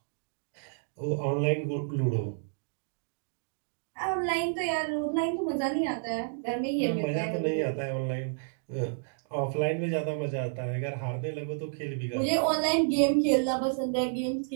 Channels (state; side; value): silent; left; digital silence